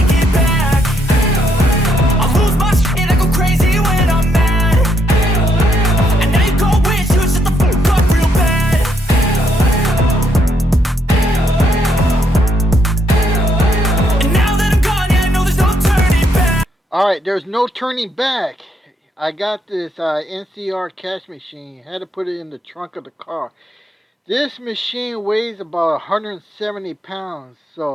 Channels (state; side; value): normal; both; correlation 0.74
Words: it back. I'll lose my shit, I go crazy when I'm mad. And now you go wish you would shut the fuck up real bad. And now that I'm gone, yeah, I know there's no turning back. Alright, there's no turning back. I got this NCR cash machine. Had to put it in the trunk of the car. This machine weighs about 170 pounds.